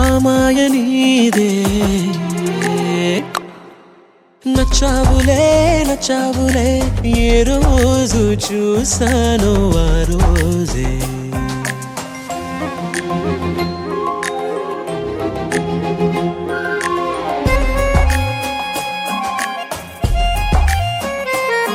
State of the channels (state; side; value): identical; both; correlation 1.00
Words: మాయ నీదే నచ్చావులే నచ్చావులే ఏ రోజు చూశానో ఆ రోజే